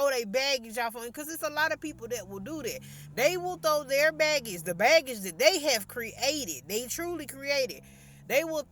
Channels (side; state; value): both; identical; correlation 1.00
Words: their baggage off on, because it's a lot of people that will do that. They will throw their baggage, the baggage that they have created, they truly created. They will